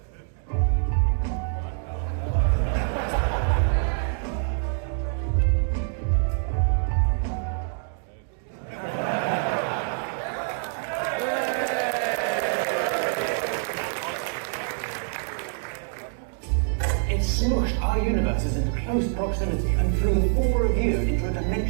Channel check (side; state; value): left; silent; 61 dB below the other